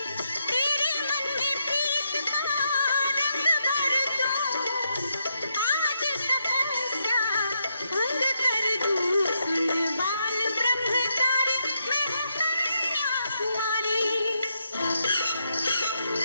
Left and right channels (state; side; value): inverted; both; correlation -0.80